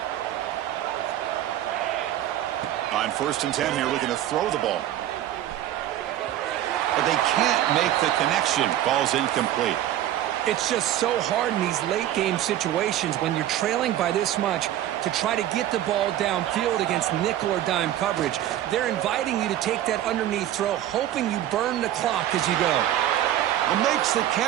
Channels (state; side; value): quieter; left; 12.5 dB